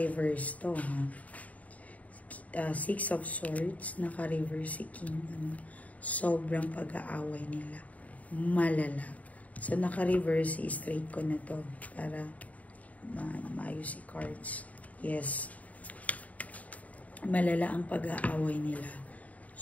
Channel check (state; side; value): late; right; 0.071 ms